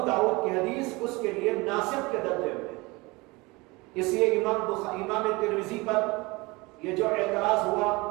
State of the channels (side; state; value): left; quieter; 24.1 dB